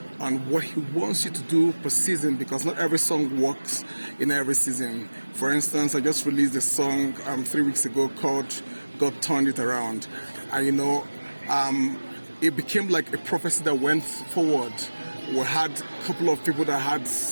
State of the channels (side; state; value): both; inverted; correlation -1.00